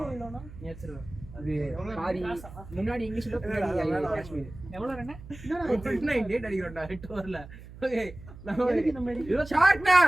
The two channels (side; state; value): right; noise; hum, 16 dB below the sound